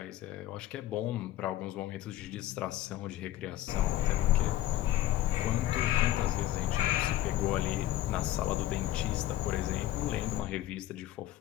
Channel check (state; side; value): quieter; right; 14.1 dB